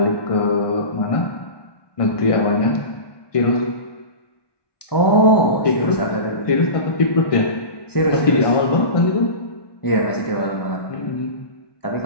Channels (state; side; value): late; right; 1.1 ms